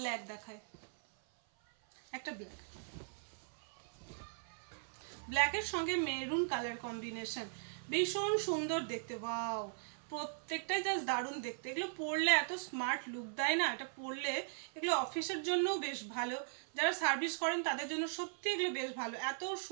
দেখায়, একটা ব্ল্যাক, ব্ল্যাকের সঙ্গে মেরুন কালার কম্বিনেশন, ভীষণ সুন্দর দেখতে। ওয়াও, প্রত্যেকটাই জাস্ট দারুণ দেখতে। এগুলো পরলে এত স্মার্ট লুক দেয় না, এটা পরলে এগুলো অফিসের জন্যও বেশ ভালো, যারা সার্ভিস করেন তাদের জন্য সত্যি এগুলো বেশ ভালো। এত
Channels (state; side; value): silent; left; 52 dB below the other